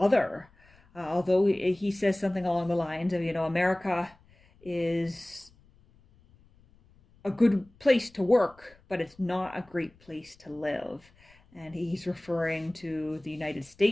Although he says something along the lines of, America is a good place to work, but it's not a great place to live. And he's referring to the United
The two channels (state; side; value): noise; left; rumble, 29 dB below the sound